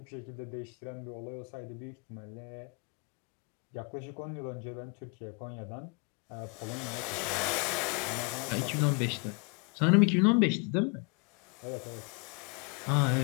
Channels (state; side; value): quieter; right; 33.7 dB